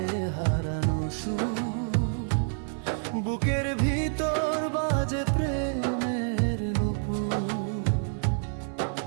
হারানো সুর, বুকের ভিতর বাজে প্রেমের নুপুর।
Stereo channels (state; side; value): silent; left; 59 dB below the other